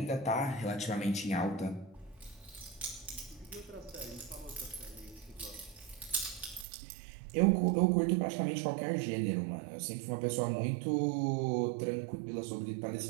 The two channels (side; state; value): left; drops out; at 6.7 s